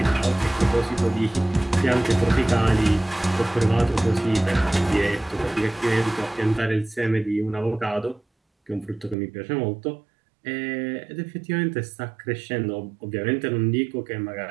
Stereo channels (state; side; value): drops out; left; at 9.2 s